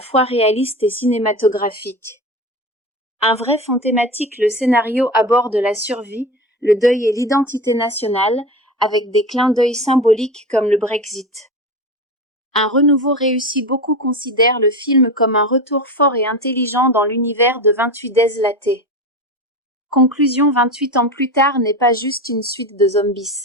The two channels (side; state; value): both; normal; correlation 0.26